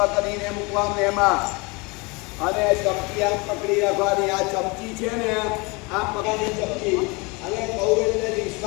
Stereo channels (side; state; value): right; quieter; 27.6 dB